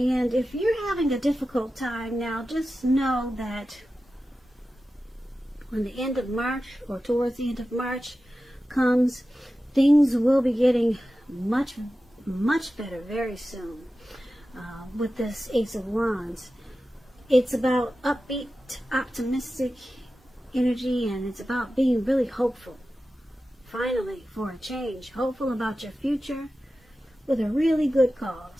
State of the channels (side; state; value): both; normal; correlation 0.94